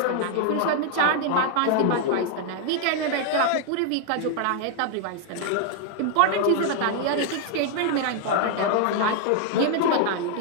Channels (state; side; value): different; both; correlation 0.00